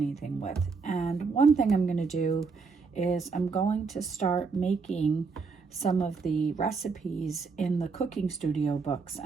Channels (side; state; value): left; quieter; 4.8 dB